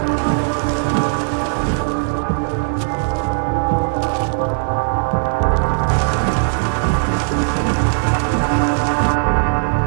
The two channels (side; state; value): left; silent; 63 dB below the other